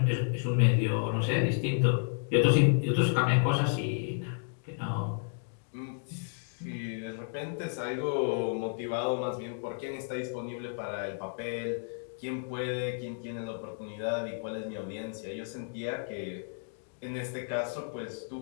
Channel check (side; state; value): right; silent; digital silence